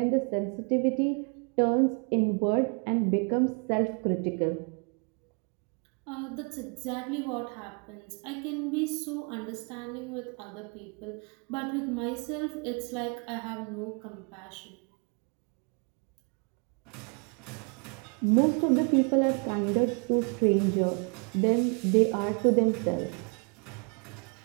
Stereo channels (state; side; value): quieter; left; 36.6 dB